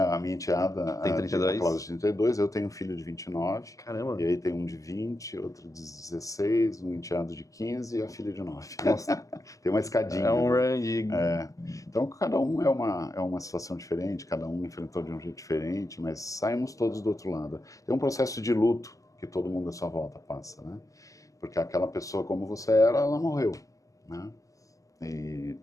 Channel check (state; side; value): late; right; 0.16 ms